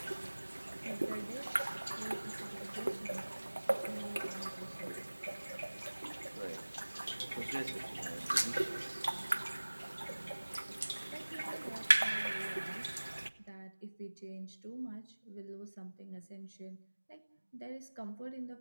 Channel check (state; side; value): inverted; both; correlation -1.00